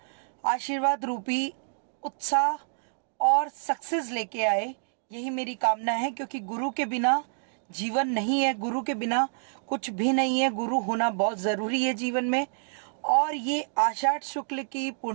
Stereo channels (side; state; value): left; silent; digital silence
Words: आशीर्वाद रूपी उत्साह और सक्सेस लेके आए। यही मेरी कामना है, क्योंकि गुरु के बिना जीवन नहीं है, गुरु के बिना कुछ भी नहीं है। गुरु होना बहुत जरूरी है जीवन में। और ये आषाढ़ शुक्ल की